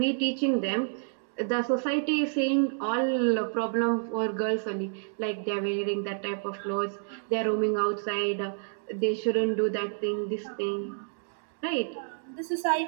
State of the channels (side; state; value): left; silent; digital silence